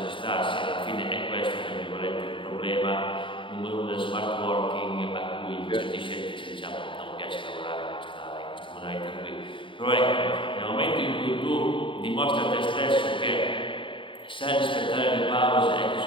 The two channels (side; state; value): right; late; 0.25 ms